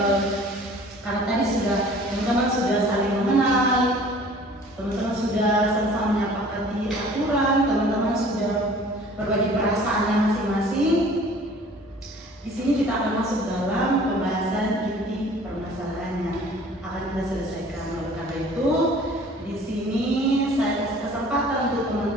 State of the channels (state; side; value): normal; both; correlation 0.49